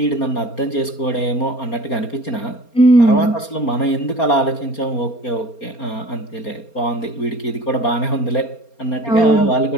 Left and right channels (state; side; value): late; right; 4.3 ms